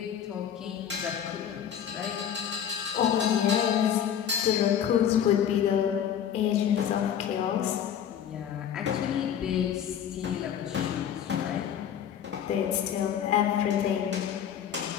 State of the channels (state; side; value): quieter; right; 9.2 dB